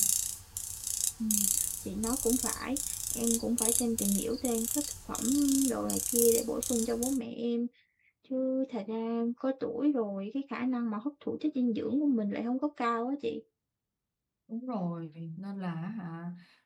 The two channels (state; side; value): identical; both; correlation 1.00